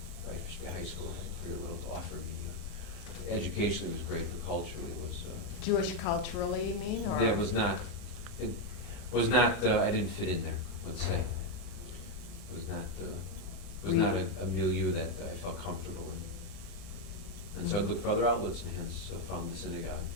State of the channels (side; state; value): right; late; 40 ms